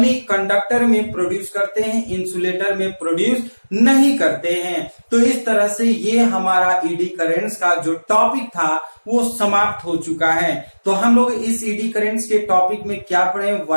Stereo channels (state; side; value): inverted; both; correlation -1.00